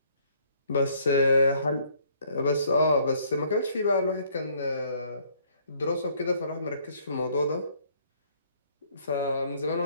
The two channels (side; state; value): both; inverted; correlation -0.63